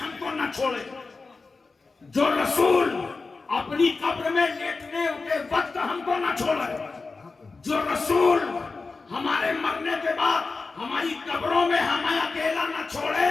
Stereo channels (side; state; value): right; quieter; 4.0 dB